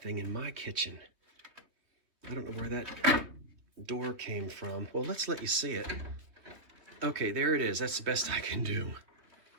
in my kitchen. I don't know where that door came from. Well, let's let you see it. Okay, there it is. That's the best I can do.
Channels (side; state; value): left; late; 3.2 ms